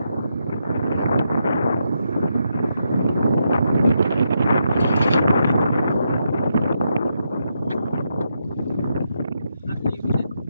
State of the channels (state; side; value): inverted; both; correlation -0.81